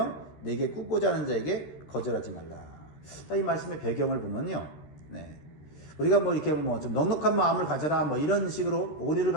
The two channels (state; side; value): late; right; 13 ms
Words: 내게 굽고자 하는 자에게 거절하지 말라. 자, 이 말씀의 배경을 보면요. 우리가 뭐 이렇게 뭐 좀 넉넉한 마음을 가져라 뭐 이런 식으로 오리를